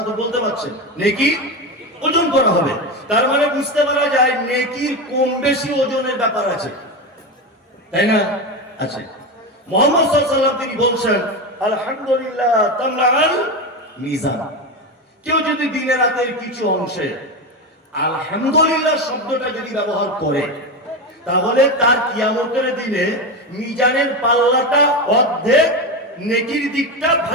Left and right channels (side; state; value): both; normal; correlation 0.17